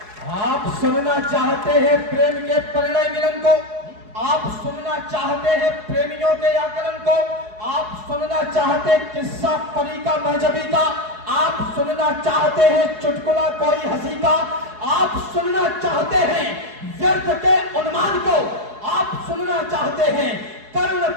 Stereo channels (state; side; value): late; left; 4.7 ms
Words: आप सुनना चाहते हैं प्रेम के परिणय मिलन को, आप सुनना चाहते हैं प्रेमियों के आकलन को, आप सुनना चाहते किस्सा परी का महजबी का, आप सुनना चाहते हैं चुटकुला कोई हंसी का, आप सुनना चाहते हैं व्यर्थ के उन्मान को, आप सुनना चाहते हैं कर्ण